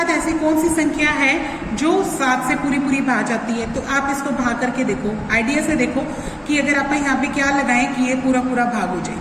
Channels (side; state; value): both; identical; correlation 1.00